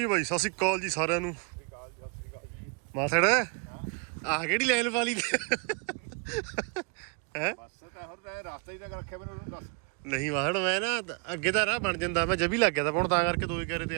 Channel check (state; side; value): quieter; left; 33.9 dB